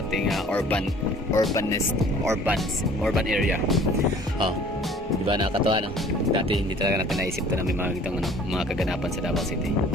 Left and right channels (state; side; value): normal; both; correlation 0.51